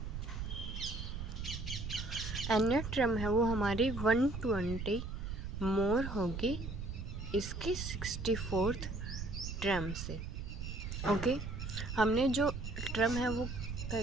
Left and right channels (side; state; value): right; noise; rumble, 6 dB below the sound